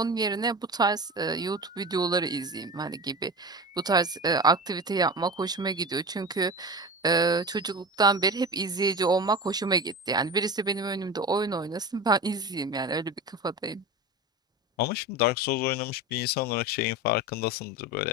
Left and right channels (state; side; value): normal; both; correlation 0.29